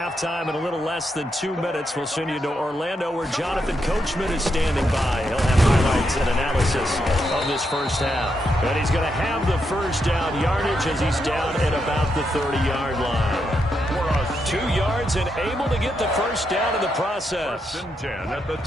in a little less than 2 minutes, we'll send you to Orlando where Jonathan Coachman is standing by. He'll have highlights and analysis of this first half. And he's going to have the first down yardage as he's down at about the 30-yard line. 2 yards and able to get the first down in the process. So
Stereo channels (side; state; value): both; normal; correlation 0.82